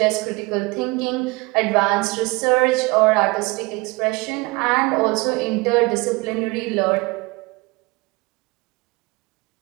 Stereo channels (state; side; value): quieter; left; 25.6 dB